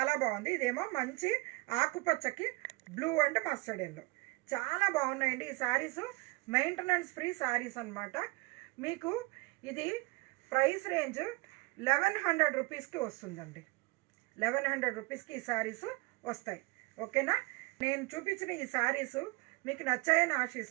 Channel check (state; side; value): quieter; left; 25.8 dB